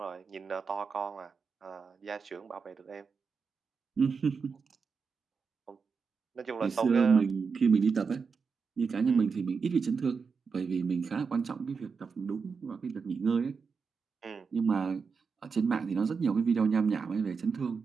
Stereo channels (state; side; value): quieter; left; 5.4 dB